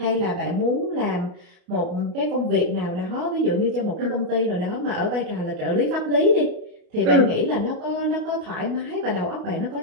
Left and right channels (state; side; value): late; left; 29 ms